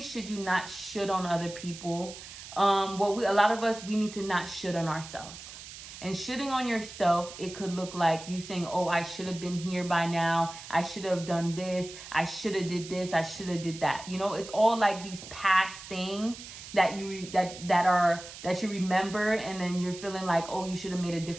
should you not shit on other people, a lot of us, we need to not shit on ourselves. And shitting on yourself, it could look like you saying, oh, I should have been here by now. I should have done this. I should have did this. I should have did that. You know, it's all like these past things that you that you remember, and then you're feeling like, oh, you should have made a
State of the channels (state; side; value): noise; right; hiss, 14 dB below the sound